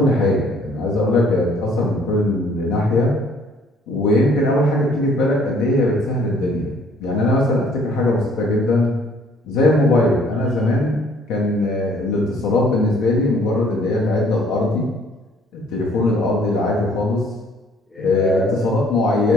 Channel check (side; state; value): both; normal; correlation 0.59